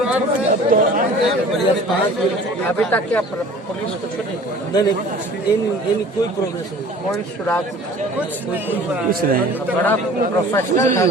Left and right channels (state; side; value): normal; both; correlation 0.46